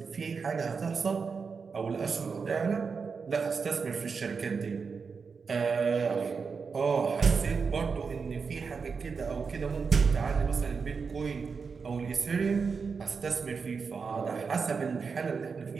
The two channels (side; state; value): left; quieter; 5.3 dB